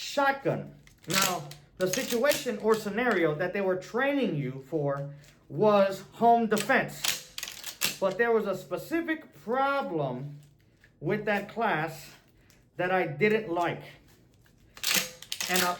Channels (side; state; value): both; identical; correlation 1.00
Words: Now, the situation or scenario that they were training you for was home defense. But there was a specific problem with that class that I didn't like.